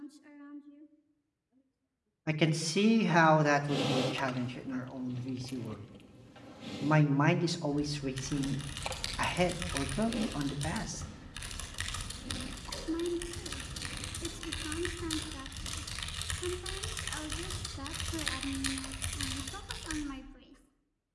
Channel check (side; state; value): both; identical; correlation 1.00